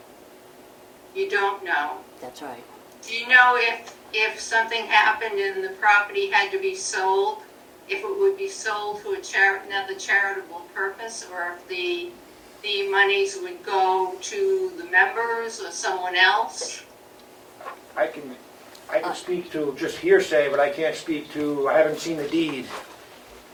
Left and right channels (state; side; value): identical; both; correlation 1.00